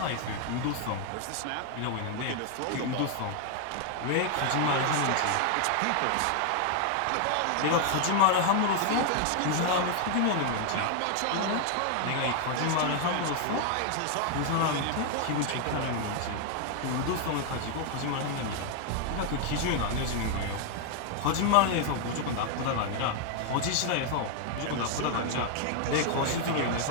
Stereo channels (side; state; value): both; different; correlation 0.00